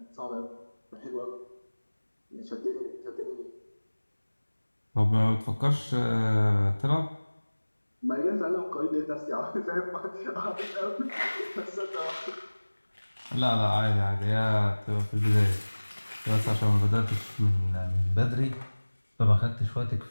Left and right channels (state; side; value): inverted; both; correlation -1.00